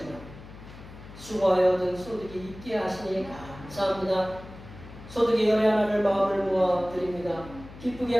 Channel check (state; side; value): noise; left; hum, 16 dB below the sound